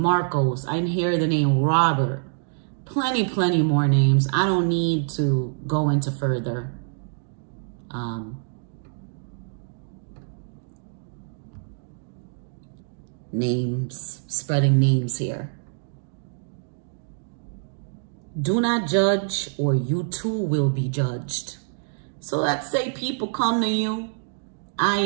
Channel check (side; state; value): left; silent; digital silence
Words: I hear the name Robert. Plenty more names. I don't need to go into further. Names, spreading names here. Do not judge or you too will be judged. So let's say people come to you. I